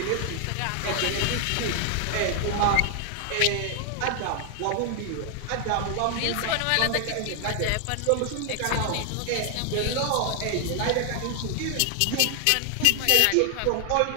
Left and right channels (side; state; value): both; different; correlation 0.00